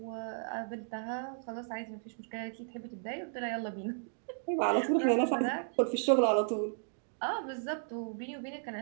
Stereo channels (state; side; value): silent; left; digital silence